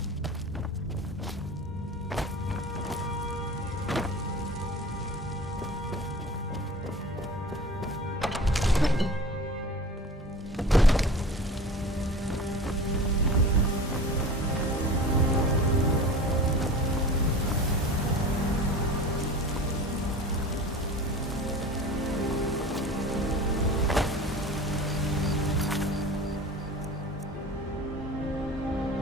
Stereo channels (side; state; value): both; normal; correlation 0.37